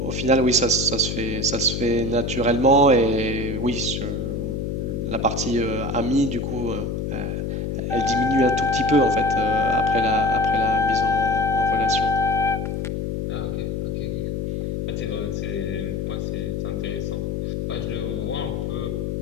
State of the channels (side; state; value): left; noise; hum, 2 dB below the sound